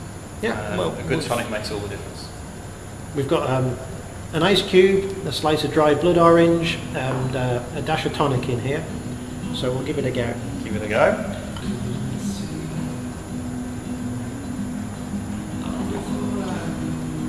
Yeah, well, a good tonic makes all the difference. We've got an ice cube, a slice of dried blood orange, and a dash of tonic in here. So we'll give it a go. Give it a go.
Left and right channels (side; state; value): both; identical; correlation 1.00